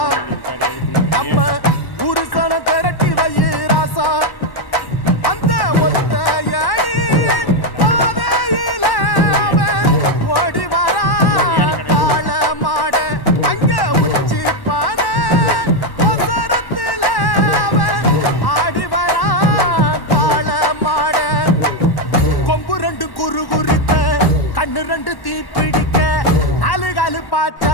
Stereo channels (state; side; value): late; right; 1.1 ms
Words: நம்ம ஒரு சன திரட்டி வை ராசா அந்த ஒத்தையடி பாதையில அவன் ஓடி வரா காள மாட அங்க உச்சி பான ஒசரத்துல அவன் ஆடி வரா காள மாட கொம்பு ரெண்டு குறு குறித்த கண்ணு ரெண்டு தீ பிடிக்க அழுகழு